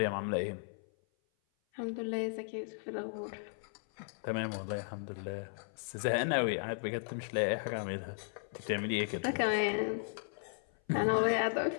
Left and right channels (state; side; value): silent; right; 54 dB below the other